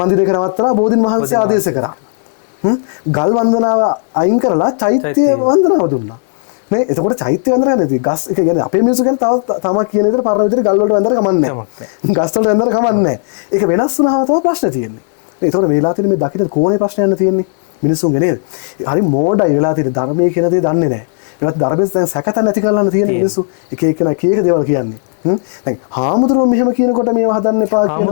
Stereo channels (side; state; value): right; silent; digital silence